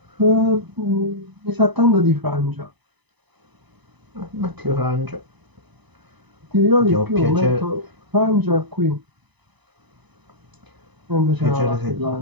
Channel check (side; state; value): left; late; 1.0 ms